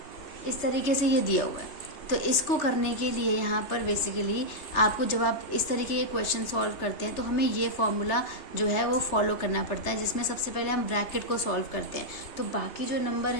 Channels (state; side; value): late; right; 3.3 ms